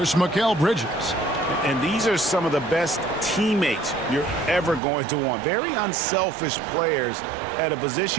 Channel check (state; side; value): drops out; left; at 4.8 s